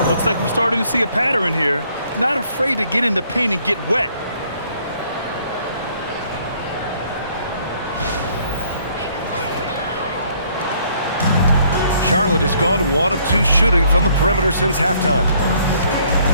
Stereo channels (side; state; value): both; inverted; correlation -0.63